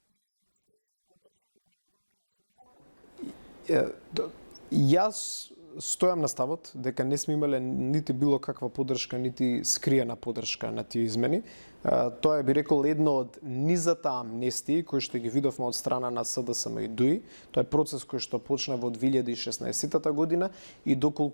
или скриена поддршка на измените на кривичниот законник. Јас стојам на ставот дека не сме имале нити било каква поддршка, нити скриена поддршка на тие измени. Тоа е, би рекол, едно од низата амнестии кои што ги видовме од страна на СДСМ и ДУИ. Тоа е процес кој што почна во 2016 година и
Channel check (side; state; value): both; inverted; correlation -1.00